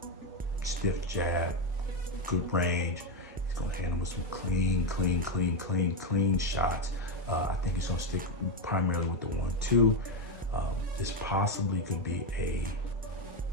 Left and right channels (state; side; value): normal; both; correlation 0.07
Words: stiff jab, good range. He's gonna handle with some clean shots. I think he's gonna stick primarily with the 1-2. This possibly could be a